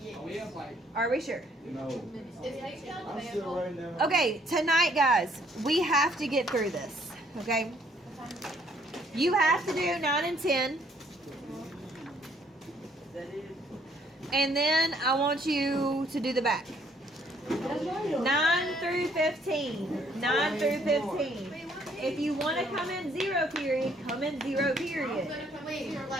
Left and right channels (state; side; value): normal; both; correlation 0.65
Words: Oh, we have like, Are we sure? No. Is H down I'm the still writing down. Okay, tonight, guys, we have to get through this. Okay. You have to do 9 and 10, and then I want you to do the back. 9 through 15. 9 through 15. If you want to come in 0 period, come in 0 period. Wait, you're